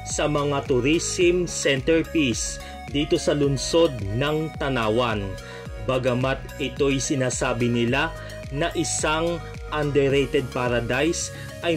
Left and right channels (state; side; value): identical; both; correlation 1.00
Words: sa mga tourism centerpiece dito sa lungsod ng Tanawan. Bagamat ito'y sinasabi nila na isang underrated paradise